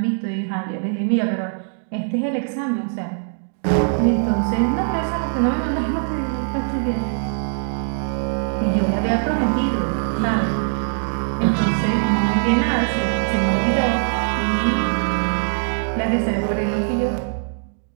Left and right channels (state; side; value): silent; left; 65 dB below the other